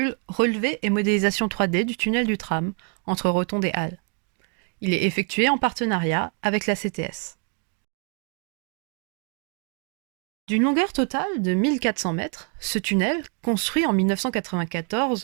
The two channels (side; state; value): left; quieter; 38.9 dB